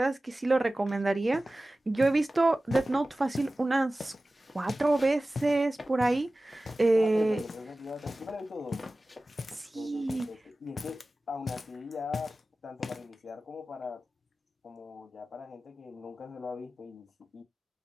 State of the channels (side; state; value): both; normal; correlation 0.96